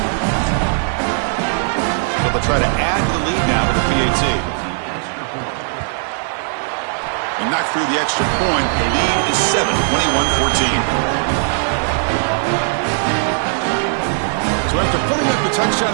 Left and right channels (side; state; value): left; silent; digital silence